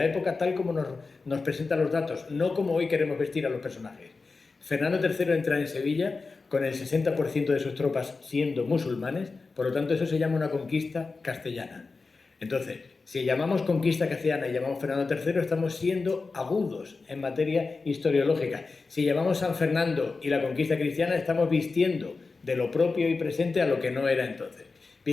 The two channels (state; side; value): quieter; right; 4.1 dB